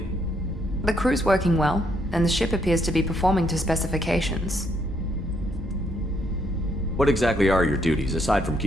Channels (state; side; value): normal; both; correlation 0.72